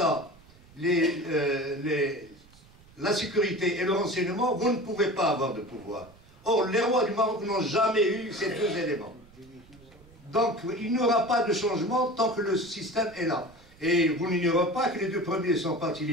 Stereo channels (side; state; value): right; noise; rumble, 26 dB below the sound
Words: la sécurité et le renseignement, vous ne pouvez pas avoir de pouvoir. Or, les rois du Maroc n'ont jamais eu ces deux éléments. Donc, il n'y aura pas de changement tant que le système est là. Et vous n'ignorez pas que les deux premiers sont partis